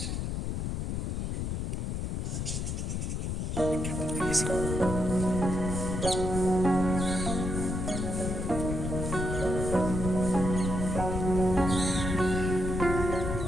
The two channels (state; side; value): noise; left; rumble, 2 dB below the sound